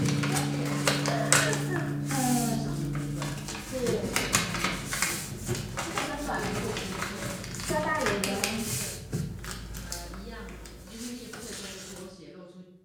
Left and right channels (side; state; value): both; identical; correlation 1.00